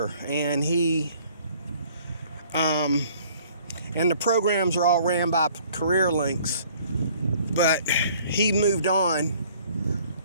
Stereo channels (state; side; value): inverted; both; correlation -0.56